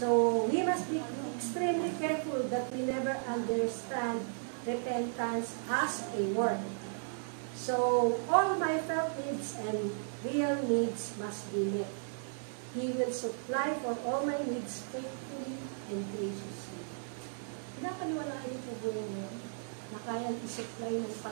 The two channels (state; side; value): silent; left; 54 dB below the other